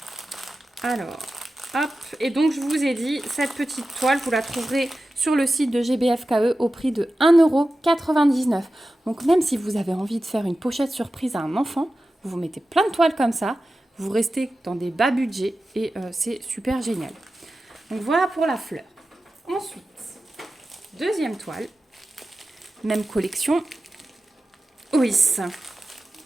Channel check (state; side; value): normal; both; correlation 0.94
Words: Alors, hop. Et donc, je vous ai dit, cette petite toile, vous la trouverez sur le site de GBFKE au prix de 1,99 €. Donc, même si vous avez envie de faire une pochette surprise à un enfant, vous mettez plein de toiles comme ça. Vous restez dans des bas budgets et c'est super génial. Donc voilà pour la fleur. Ensuite, deuxième toile, même collection. Oui,